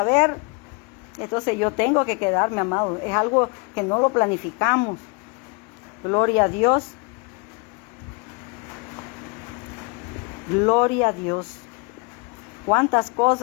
ver. Entonces yo tengo que quedarme, amado. Es algo que no lo planificamos. Gloria a Dios. Gloria a Dios. Cuántas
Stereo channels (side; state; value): right; quieter; 31.6 dB